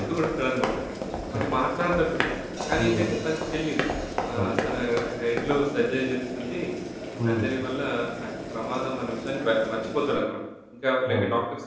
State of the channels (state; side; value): identical; both; correlation 1.00